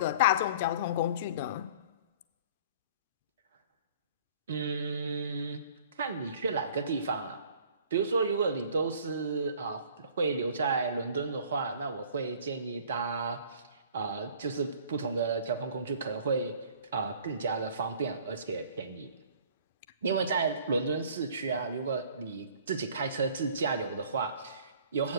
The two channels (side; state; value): both; inverted; correlation -0.50